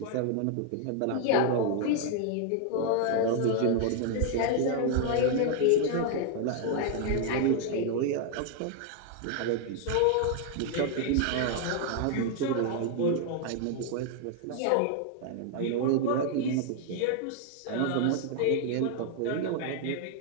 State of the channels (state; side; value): different; both; correlation 0.00